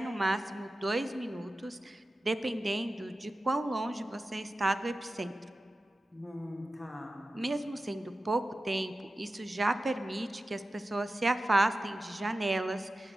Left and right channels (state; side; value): normal; both; correlation 0.94